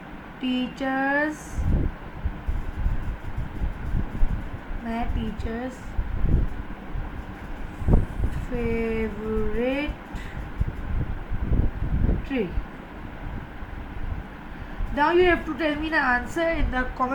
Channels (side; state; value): both; identical; correlation 1.00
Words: teachers favorite tree? Now you have to tell me the answer in the